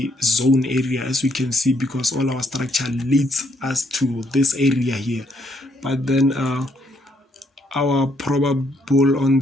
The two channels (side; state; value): both; normal; correlation 0.72